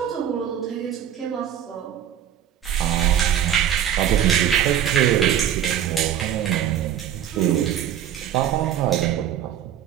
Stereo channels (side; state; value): left; quieter; 10.2 dB